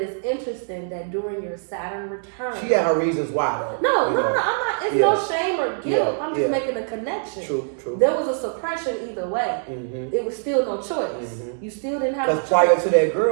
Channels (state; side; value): silent; left; 63 dB below the other